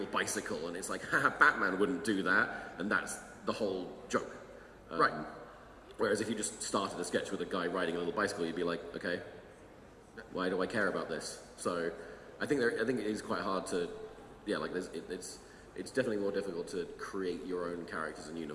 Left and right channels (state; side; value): identical; both; correlation 1.00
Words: bicycle, and it's like, haha, Batman wouldn't do that, and that's the whole joke. Right. Whereas if you just started a sketch with a guy riding a little bicycle, you'd be like, okay, why do I care about this? So I think it is quite hard to, it's definitely more difficult to create your own characters and